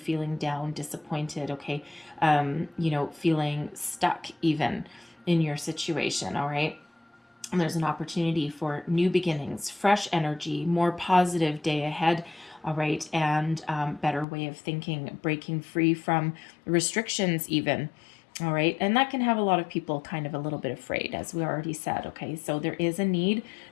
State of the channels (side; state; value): right; drops out; at 14.2 s